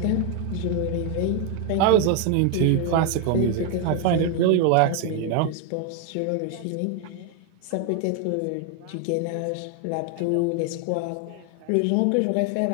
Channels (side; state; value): both; different; correlation 0.01